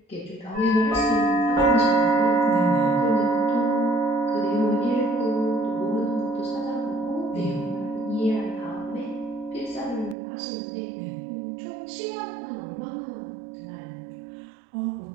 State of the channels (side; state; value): left; drops out; at 10.2 s